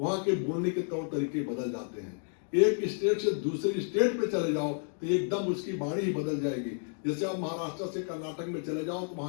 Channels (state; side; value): silent; right; 57 dB below the other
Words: के बोलने के तौर तरीके बदल जाते हैं। एक स्टेट से दूसरे स्टेट पे चले जाओ तो एकदम उसकी वाणी ही बदल जाएगी। जैसे आप महाराष्ट्र से कर्नाटक में चले जाओ तो